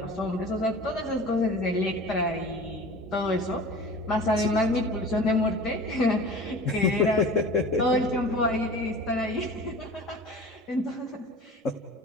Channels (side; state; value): both; normal; correlation 0.39